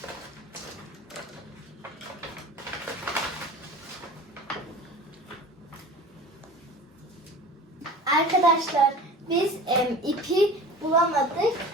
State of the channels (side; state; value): both; normal; correlation 0.38